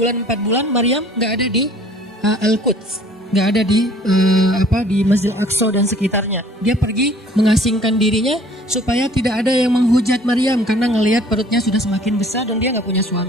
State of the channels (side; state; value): both; normal; correlation 0.53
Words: 4 bulan Maryam nggak ada di Al-Quds, nggak ada di di Masjid Al-Aqsa dan sekitarnya. Dia pergi mengasingkan dirinya supaya tidak ada yang menghujat Maryam karena ngelihat perutnya sudah semakin besar dan dia nggak punya